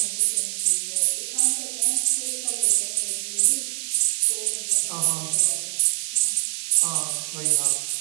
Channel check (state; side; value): silent; left; digital silence